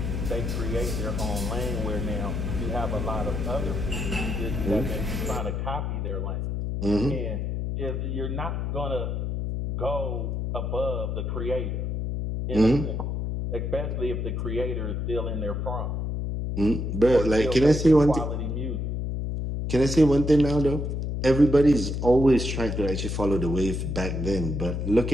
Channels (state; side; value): noise; left; hum, 2 dB below the sound